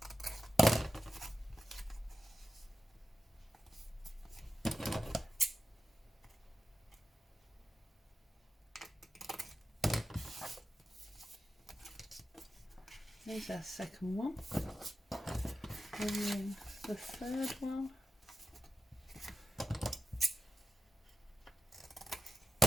Here's our second one. And then the third one. I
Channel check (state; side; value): normal; both; correlation 0.92